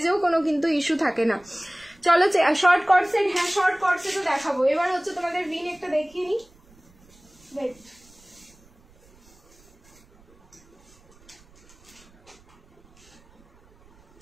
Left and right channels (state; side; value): noise; right; rumble, 29 dB below the sound